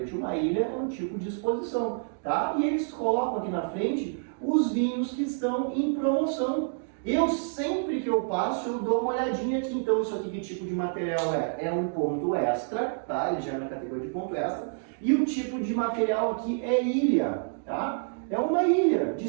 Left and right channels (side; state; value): left; silent; digital silence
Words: uma ilha é um tipo de exposição, tá? E eles colocam aqui na frente os vinhos que estão em promoção. Eu sempre que eu passo, eu dou uma olhadinha aqui. Então isso aqui, que tipo de material é? É um ponto extra, tá? Ele já é na categoria de ponto extra. E o tipo de material aqui é ilha, tá? É uma ilha de